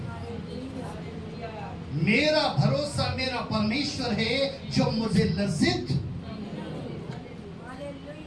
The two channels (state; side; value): identical; both; correlation 1.00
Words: मेरा भरोसा मेरा परमेश्वर है जो मुझे लज्जित।